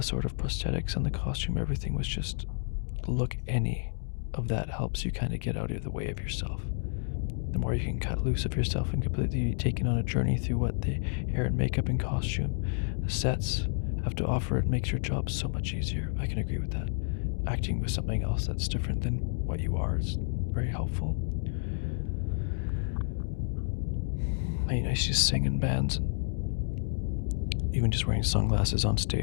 sort of prosthetics and the costume, everything was just look any of that helps you kind of get out of the way of yourself. The more you can cut loose of yourself and completely taken on a journey through what the hair and makeup and costume, the sets have to offer, it makes your job so much easier. I can agree with that. Acting with something else that's different than what you are is very helpful. I used to sing in bands, and even just wearing sunglasses on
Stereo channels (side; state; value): right; silent; digital silence